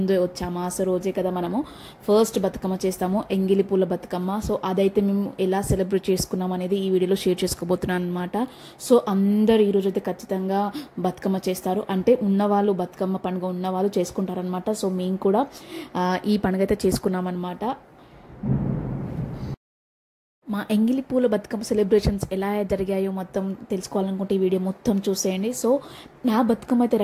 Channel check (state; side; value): identical; both; correlation 1.00